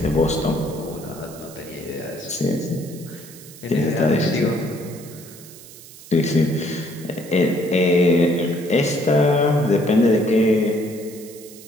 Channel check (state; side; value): noise; right; hiss, 18 dB below the sound